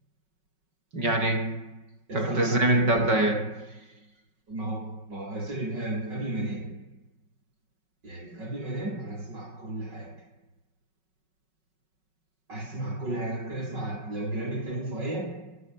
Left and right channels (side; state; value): left; late; 5.4 ms